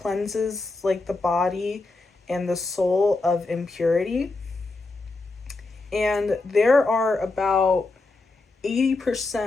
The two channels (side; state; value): right; quieter; 3.4 dB